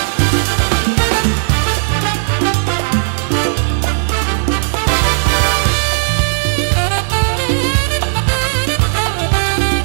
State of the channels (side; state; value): left; silent; digital silence